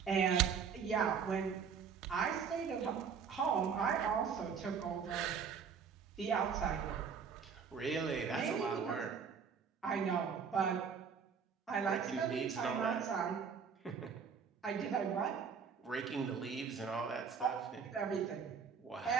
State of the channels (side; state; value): left; quieter; 6.5 dB